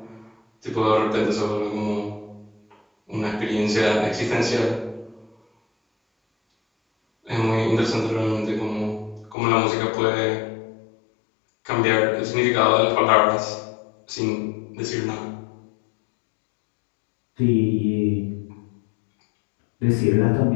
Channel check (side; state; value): right; drops out; at 9.3 s